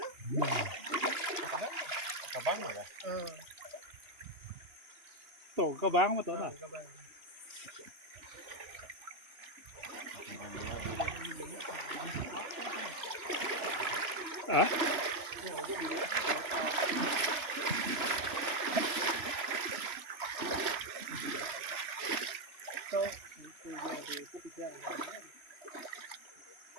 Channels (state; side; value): late; left; 3.0 ms